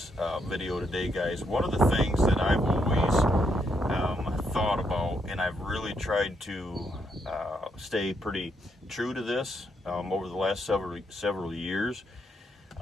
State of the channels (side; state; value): both; normal; correlation 0.77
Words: video today, guys. One of the things that I've always thought about, and I've really tried to stay pretty true to this over the last several years,